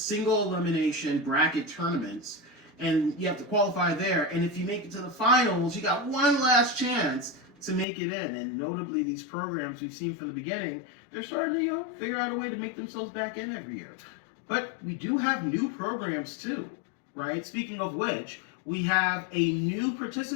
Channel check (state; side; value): drops out; right; at 7.9 s